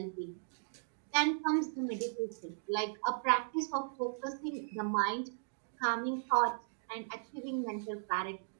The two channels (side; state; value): left; silent; digital silence